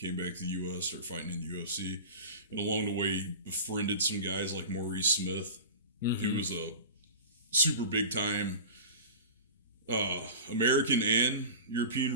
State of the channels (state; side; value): inverted; both; correlation -0.33